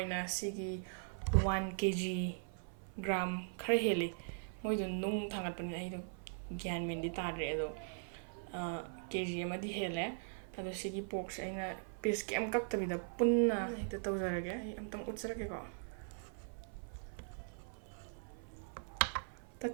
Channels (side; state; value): left; silent; 51 dB below the other